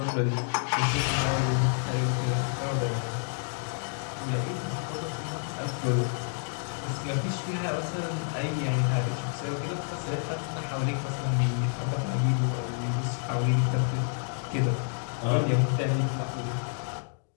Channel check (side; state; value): right; silent; 59 dB below the other